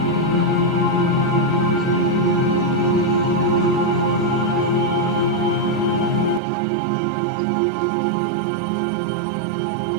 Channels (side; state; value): left; drops out; at 6.4 s